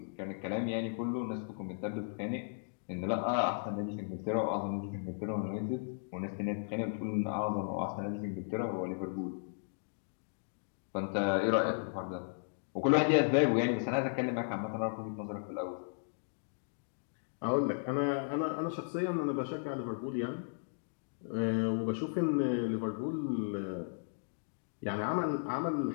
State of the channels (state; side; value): silent; right; digital silence